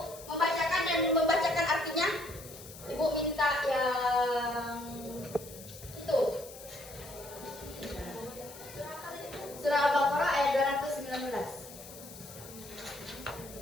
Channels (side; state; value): left; noise; hiss, 16 dB below the sound